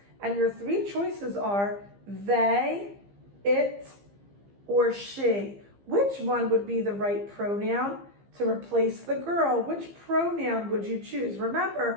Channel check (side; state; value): left; late; 15 ms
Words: And your three choices are they, it, or she. Which one would be the right pronoun to replace the girl? Which pronoun would you choose?